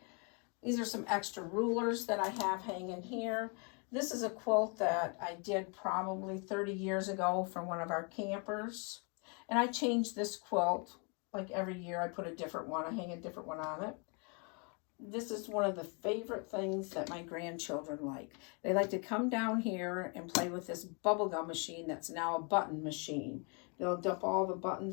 These are some extra rulers that I have hanging here. This is a quilt that I did probably 30 years ago for one of our campers. And I change this quilt like every year. I put a different one, I hang a different one on it. This is one of the favorite things that my grandchildren like. They like to come down here and play with this bubblegum machine that's now a button machine. They'll dump all the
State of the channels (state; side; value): quieter; right; 35.2 dB